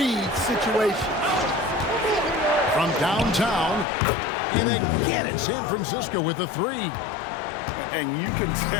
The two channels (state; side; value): drops out; right; at 3.9 s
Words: situations. From downtown, and again in San Francisco with a three. And you can